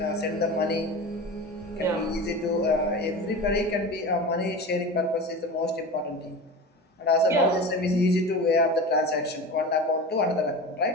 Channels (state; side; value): normal; both; correlation 0.30